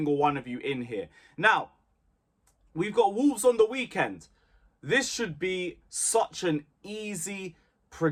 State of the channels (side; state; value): both; identical; correlation 1.00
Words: one of you in here. Now, we've got Wolves on the weekend. This should be such an easy,